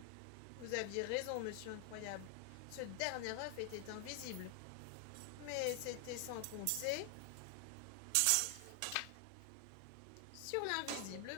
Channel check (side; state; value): both; different; correlation 0.00